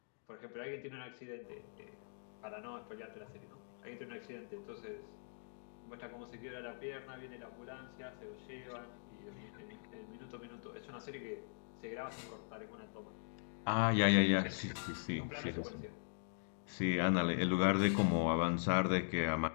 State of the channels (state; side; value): silent; right; digital silence